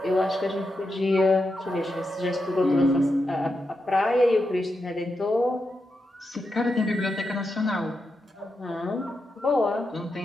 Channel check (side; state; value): both; normal; correlation 0.86